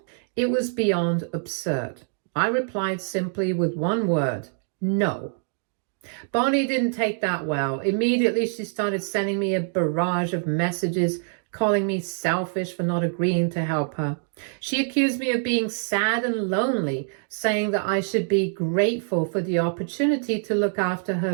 It was beyond absurd. I replied simply with one word: no. Bonnie didn't take that well. Immediately she started sending me a barrage of messages, calling me selfish for not agreeing to help her. She accused me of being sad and lonely, saying that I should be grateful for the opportunity to look after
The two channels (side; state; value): left; silent; 62 dB below the other